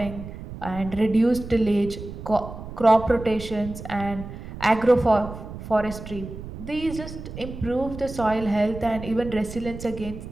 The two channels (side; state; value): right; noise; rumble, 11 dB below the sound